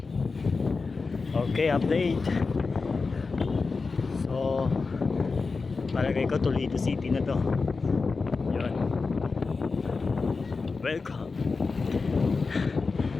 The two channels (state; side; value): quieter; right; 4.3 dB